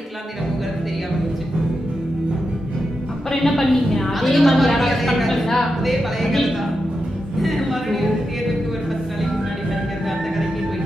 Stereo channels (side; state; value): both; normal; correlation 0.88